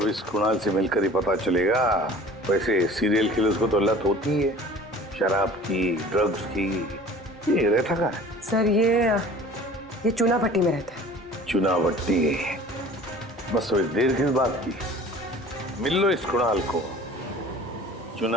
अब इस कुणाल से मिलकर ही पता चलेगा। वैसे सीरियल किलर्स को तो लत होती है शराब की, ड्रग्स की। ये रहता कहाँ है? सर ये चूना भट्टी में रहता है। चूना भट्टी? बस तो देर किस बात की, मिल लो इस कुणाल को।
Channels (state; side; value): normal; both; correlation 0.45